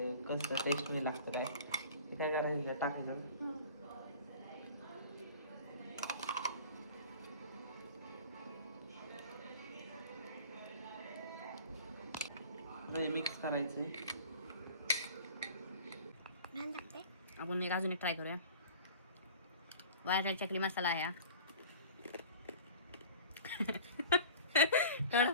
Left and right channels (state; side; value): inverted; both; correlation -0.43